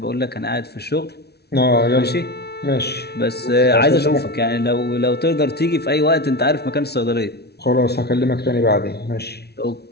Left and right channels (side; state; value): right; late; 0.48 ms